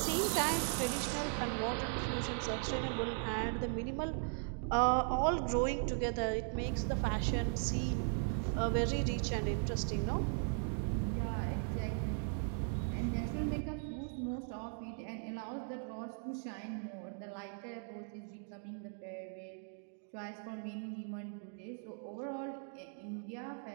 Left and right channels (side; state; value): left; silent; 52 dB below the other